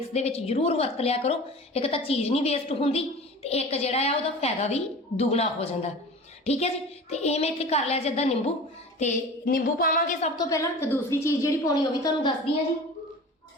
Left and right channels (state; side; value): normal; both; correlation 0.37